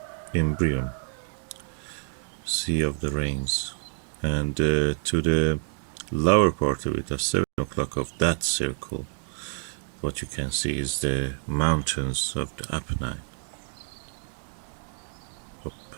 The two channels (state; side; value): silent; left; digital silence